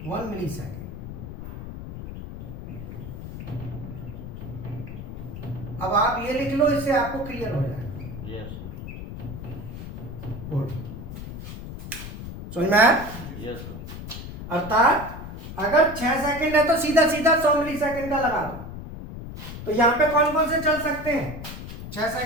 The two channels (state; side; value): noise; left; rumble, 10 dB below the sound